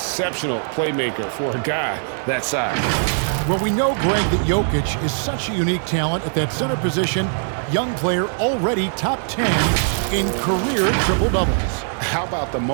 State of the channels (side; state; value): left; silent; digital silence